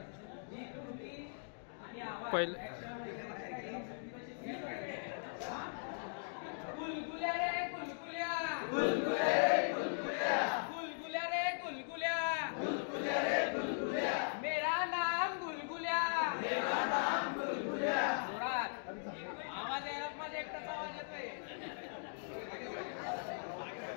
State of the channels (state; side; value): silent; right; digital silence